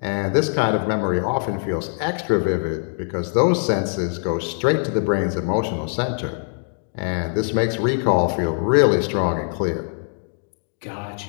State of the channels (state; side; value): silent; right; 57 dB below the other